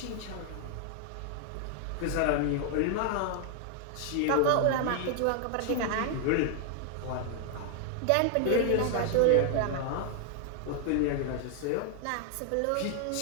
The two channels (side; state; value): both; different; correlation 0.00